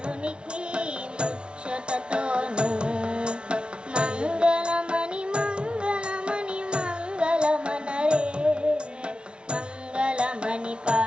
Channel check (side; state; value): left; late; 0.057 ms